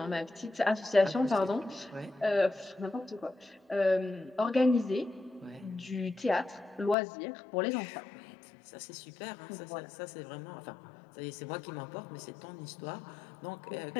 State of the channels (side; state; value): right; drops out; at 7.0 s